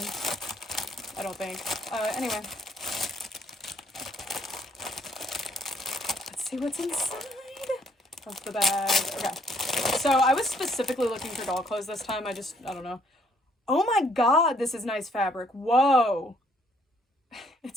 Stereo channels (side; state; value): both; normal; correlation 0.66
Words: I don't think. Anyway. Let's see what's inside of the bag. Okay. So I was specifically looking for doll clothes this time. I don't know. Oh my god, this is nice fabric. Whoa.